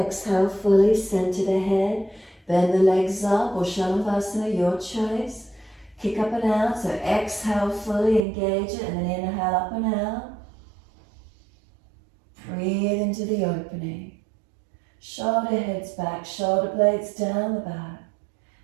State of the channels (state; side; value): drops out; left; at 8.2 s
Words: fully, center the head, bend the legs up, or Shalabhasana, your choice. Kick up and out, so exhale fully, engage it, and then inhale up and out. Breathe into the opening. Shoulder heads back, shoulder blades down the back.